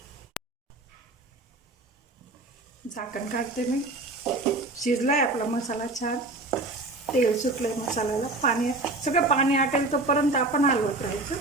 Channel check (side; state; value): left; quieter; 3.0 dB